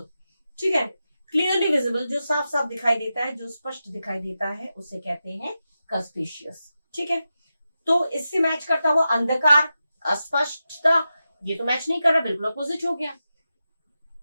ठीक है। क्लियरली विजिबल, जो साफ साफ दिखाई देता है, जो स्पष्ट दिखाई देता है, उसे कहते हैं कंस्पिशियस, ठीक है। तो इससे मैच करता हुआ अंधकार, अस्पष्टता, ये तो मैच नहीं कर रहा, बिल्कुल अपोजिट हो गया।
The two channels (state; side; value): inverted; both; correlation -0.91